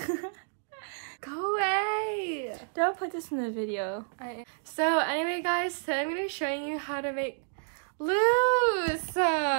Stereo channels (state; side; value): silent; left; digital silence